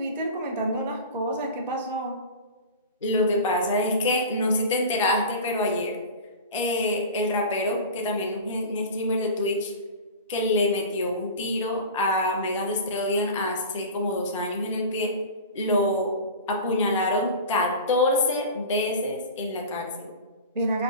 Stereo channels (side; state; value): both; inverted; correlation -0.33